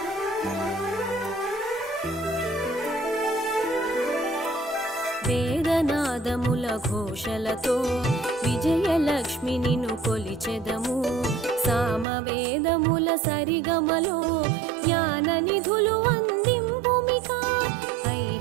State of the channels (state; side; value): drops out; left; at 12.1 s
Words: వేదనాదముల ఘోషలతో విజయలక్ష్మి నిన్ను కొలిచెదము. సామవేదముల సరిగమలో జ్ఞాన నిధులు అందింపుమిక.